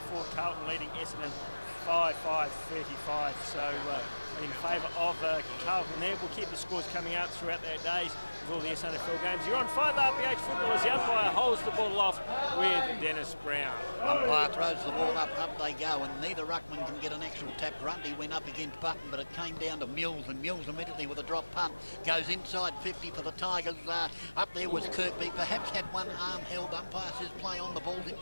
Carlton leading Essendon 5-5, 35. So in favour of Carlton there. We'll keep the scores coming out throughout their days with all the SANFL games. You're on 5 RPH football as the umpire holds the ball off with Dennis Brown. Umpire throws the ball up they go, and neither ruckman can get an actual tap. Grundy went up against Button, but it came down to Mills, and Mills immediately with a drop punt goes inside 50 for the Tigers. Up there was Kirkby, perhaps had one arm held. Umpire says play on, the ball's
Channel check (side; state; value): both; inverted; correlation -1.00